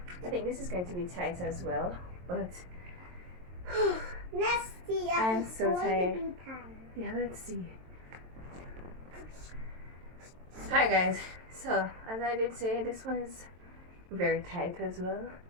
I think this is going to be tight as well, but let's see. I'm so tired. To be tight. Yeah, let's see. Hi guys. So as I did say, this one is very tight as well.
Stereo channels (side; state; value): left; late; 22 ms